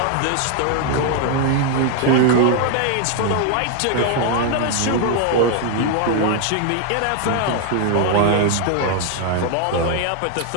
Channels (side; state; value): both; different; correlation 0.00